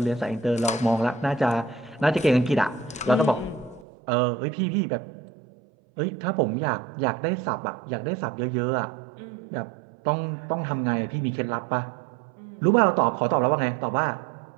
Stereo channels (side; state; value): left; drops out; at 3.9 s